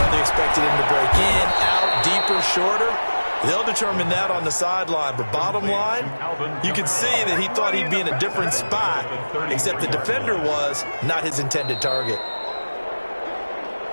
he expected him to break in, out, deeper, shorter, they'll determine that on the sideline. But bottom line, you can see that he thought he'd be in a different spot, except the defender was not his intended target.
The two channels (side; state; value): both; inverted; correlation -1.00